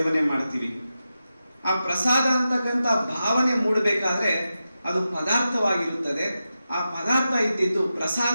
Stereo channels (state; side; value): inverted; both; correlation -0.91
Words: ಮಾಡ್ತೀವಿ. ಆ ಪ್ರಸಾದ ಅಂತಕ್ಕಂಥ ಭಾವನೆ ಮೂಡಬೇಕಾದ್ರೆ ಅದು ಪದಾರ್ಥವಾಗಿರುತ್ತದೆ. ಆ ಪದಾರ್ಥ ಇದ್ದಿದ್ದು